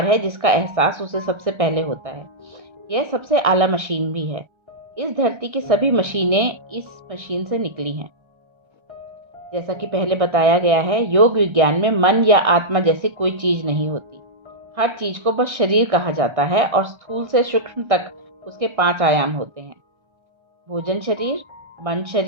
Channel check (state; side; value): late; left; 1.3 ms